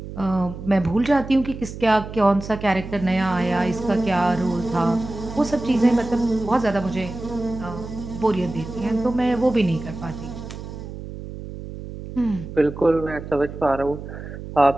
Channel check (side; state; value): right; noise; hum, 11 dB below the sound